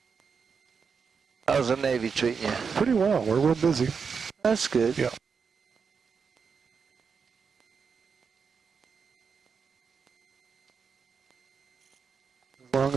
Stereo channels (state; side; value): quieter; left; 5.8 dB